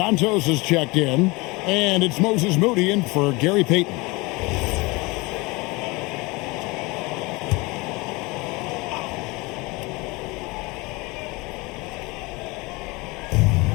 is checked in. And it's Moses Moody in for Gary Payton.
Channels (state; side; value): quieter; right; 24.8 dB